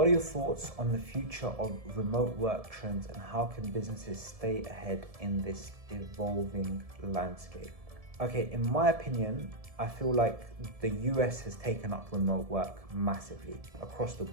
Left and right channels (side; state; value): left; late; 1.7 ms